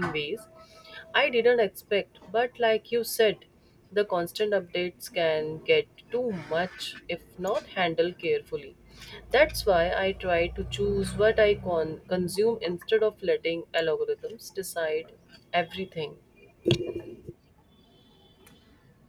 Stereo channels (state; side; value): identical; both; correlation 1.00